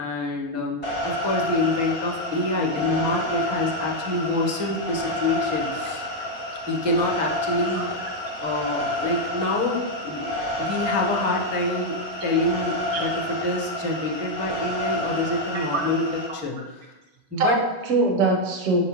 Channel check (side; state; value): left; late; 6.2 ms